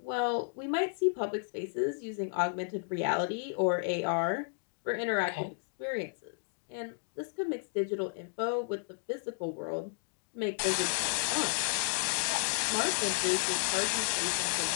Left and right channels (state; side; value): silent; right; digital silence